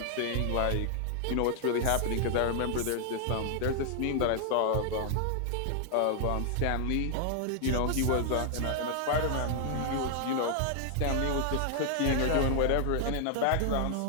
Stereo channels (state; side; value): different; both; correlation 0.00